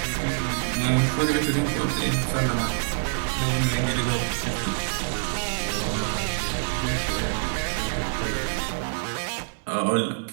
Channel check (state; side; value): silent; left; digital silence